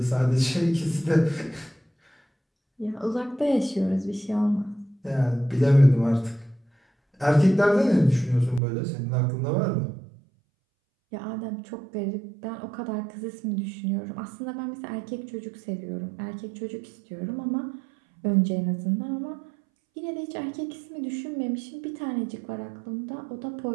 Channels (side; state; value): left; drops out; at 8.6 s